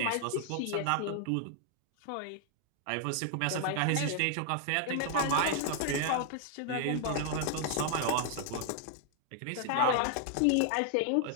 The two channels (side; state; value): both; different; correlation 0.00